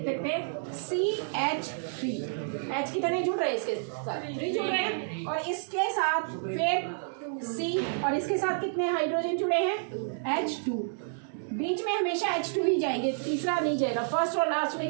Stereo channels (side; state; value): left; silent; digital silence